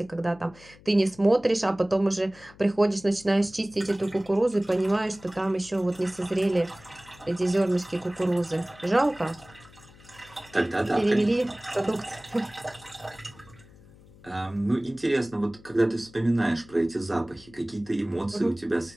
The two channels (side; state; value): left; noise; hum, 24 dB below the sound